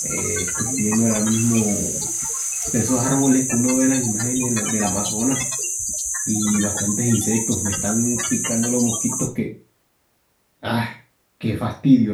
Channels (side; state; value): both; identical; correlation 1.00